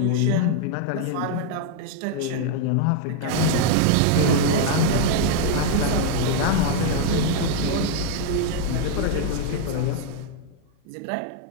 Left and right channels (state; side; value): different; both; correlation 0.00